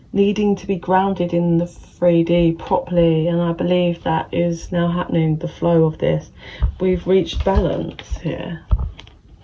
needing to be grounded in the 3D properly, and I believe that is now happening, the flow of this. We've reached balance here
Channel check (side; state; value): both; identical; correlation 1.00